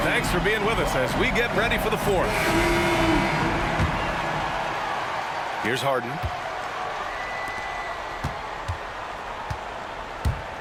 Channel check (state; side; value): identical; both; correlation 1.00